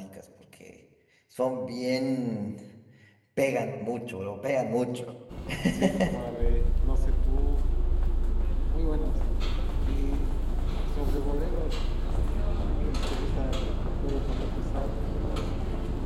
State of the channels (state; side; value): identical; both; correlation 1.00